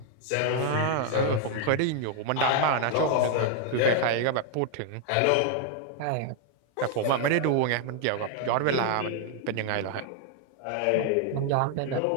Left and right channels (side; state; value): both; different; correlation 0.00